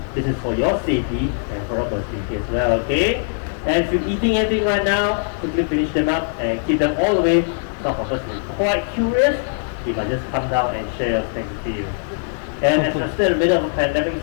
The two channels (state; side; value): silent; right; 56 dB below the other